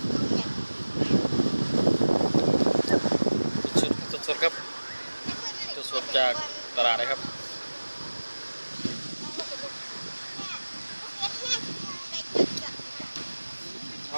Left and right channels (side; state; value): both; inverted; correlation -1.00